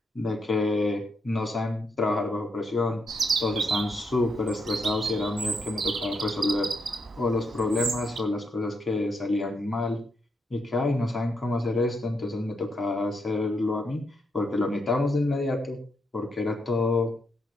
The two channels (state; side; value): normal; both; correlation 0.79